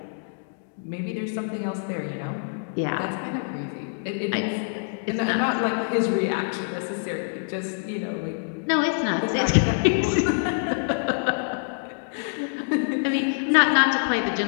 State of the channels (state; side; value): silent; right; digital silence